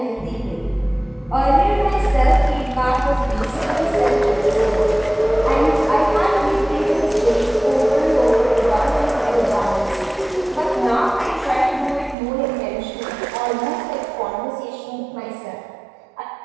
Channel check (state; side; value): drops out; left; at 12.2 s